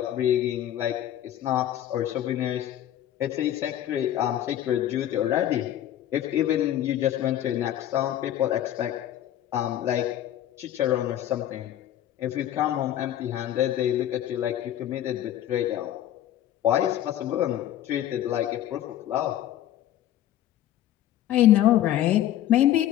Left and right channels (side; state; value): right; quieter; 12.1 dB